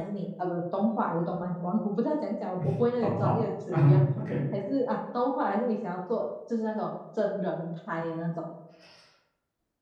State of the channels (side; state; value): both; identical; correlation 1.00